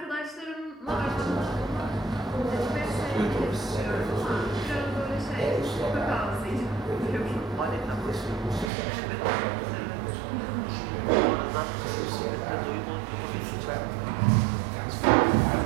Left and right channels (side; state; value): left; drops out; at 8.7 s